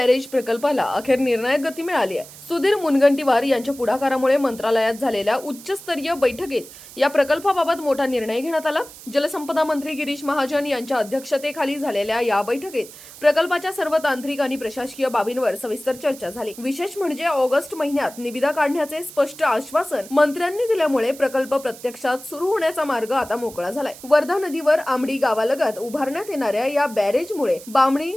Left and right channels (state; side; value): noise; right; hiss, 17 dB below the sound